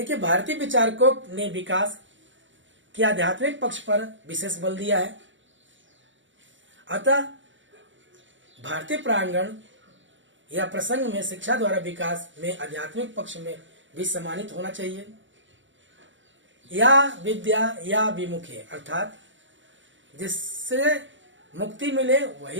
भारतीय विचारकों ने विकास के आध्यात्मिक पक्ष पर विशेष बल दिया है। अतः भारतीय प्रांगण या प्रसंग में शिक्षा द्वारा विकास में आध्यात्मिक पक्ष में भी सम्मानित होना चाहिए। या विद्या या विमुखे, अर्थात जिससे मुक्ति मिले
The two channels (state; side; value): late; left; 0.55 ms